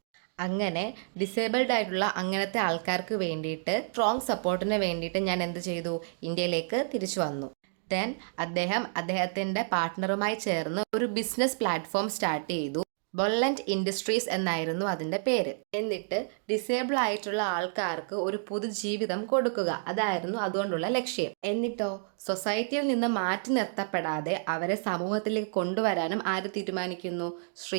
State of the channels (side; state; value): left; silent; digital silence